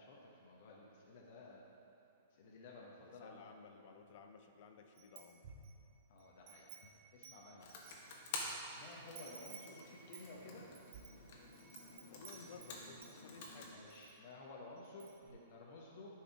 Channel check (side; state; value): both; inverted; correlation -0.31